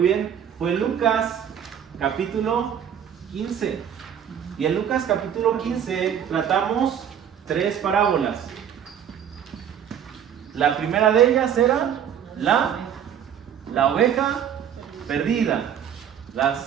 bien, fue Lucas capítulo 15. Y en Lucas capítulo 15 tratamos 3 parábolas. La primera de ellas era la oveja perdida. La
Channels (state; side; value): quieter; left; 9.0 dB